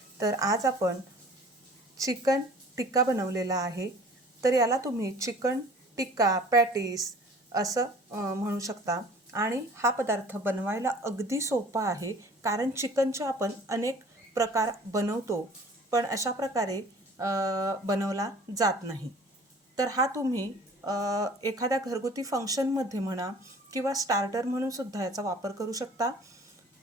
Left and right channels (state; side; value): normal; both; correlation 0.48